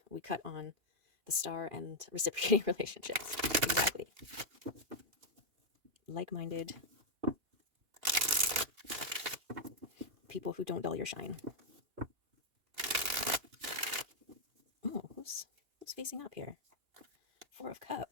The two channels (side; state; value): left; late; 2.9 ms